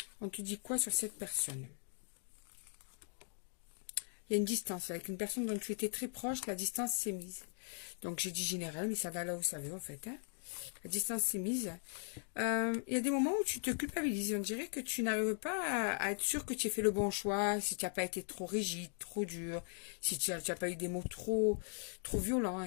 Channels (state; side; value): silent; right; 52 dB below the other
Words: On te dit quoi sur cette personne? Il y a une distance. Avec une personne dont tu étais très proche, la distance s'est mise. Donc j'ai dit général, mais ça va là où ça veut en fait. Hein. La distance s'est mise. Il y a des moments où tu te culpabilises. On dirait que tu n'arrives pas à être sûr que tu as fait le bon choix, si tu n'as pas été trop rigide, trop dur, si tu n'as pas eu des mots trop